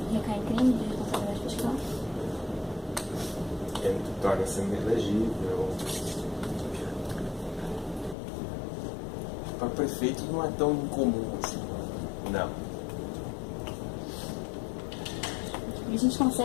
Recai em crime de responsabilidade fiscal? Ele torna-se inelegível. Para prefeitos não é tão incomum assim. Não. E a gente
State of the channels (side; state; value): right; drops out; at 8.2 s